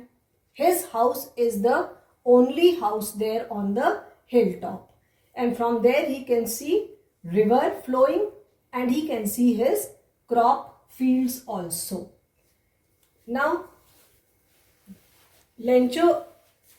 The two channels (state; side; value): identical; both; correlation 1.00